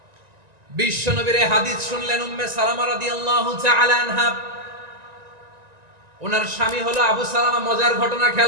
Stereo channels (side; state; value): left; late; 1.9 ms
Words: বিশ্বনবীর হাদিস শুনলেন উম্মে সালামা রাদিয়াল্লাহু তাআলা আনহা। ওনার স্বামী হলো আবু সালামা। মজার ঘটনা